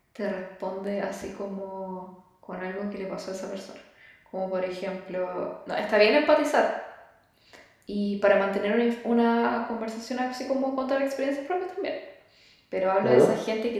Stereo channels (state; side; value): identical; both; correlation 1.00